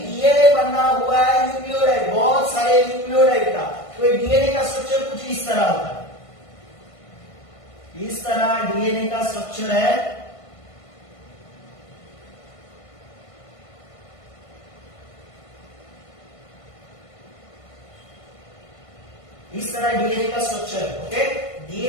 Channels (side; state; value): right; late; 1.5 ms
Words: डीएनए बना हुआ है न्यूक्लियोटाइड, बहुत सारे न्यूक्लियोटाइड का, तो डीएनए का स्ट्रक्चर कुछ इस तरह होता है, इस तरह डीएनए का स्ट्रक्चर है। इस तरह डीएनए का स्ट्रक्चर है, ओके।